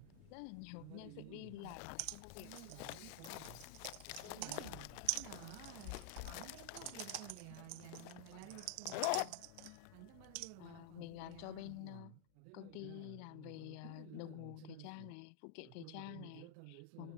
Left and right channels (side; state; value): both; different; correlation 0.00